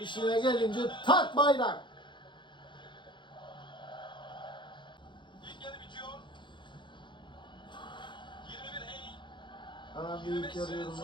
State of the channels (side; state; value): right; late; 0.23 ms